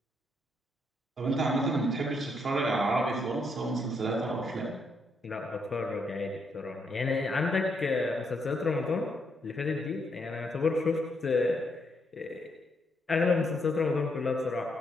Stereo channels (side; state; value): both; normal; correlation 0.76